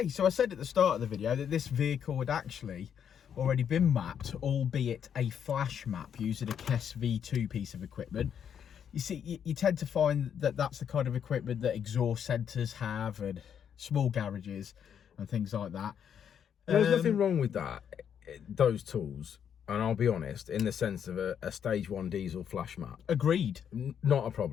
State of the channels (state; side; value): quieter; right; 8.3 dB